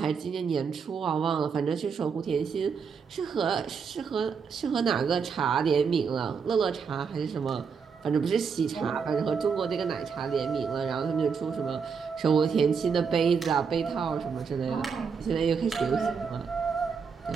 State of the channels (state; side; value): quieter; left; 6.0 dB